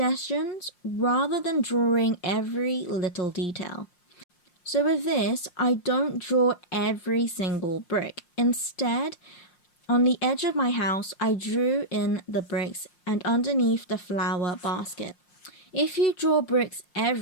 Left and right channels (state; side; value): late; right; 5.6 ms